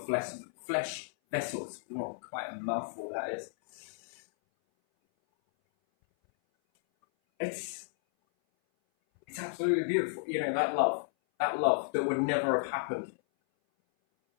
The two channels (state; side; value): silent; right; 56 dB below the other